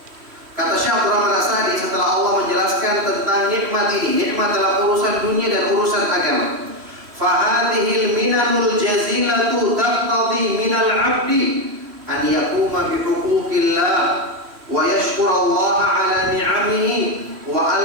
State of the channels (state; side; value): late; left; 3.1 ms